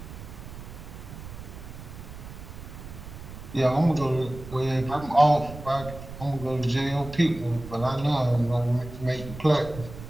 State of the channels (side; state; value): right; noise; rumble, 13 dB below the sound